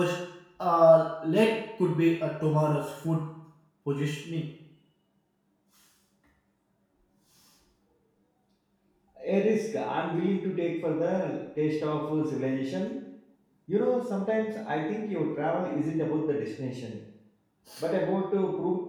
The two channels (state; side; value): identical; both; correlation 1.00